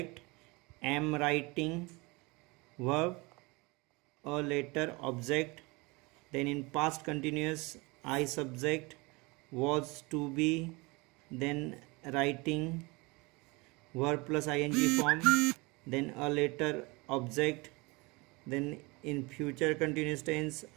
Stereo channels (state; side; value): quieter; left; 25.7 dB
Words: am writing, verb, a later object. Then in past continuous, I subject, was to be, then writing, verb plus ing form, then a later object. Then in future continuous tense,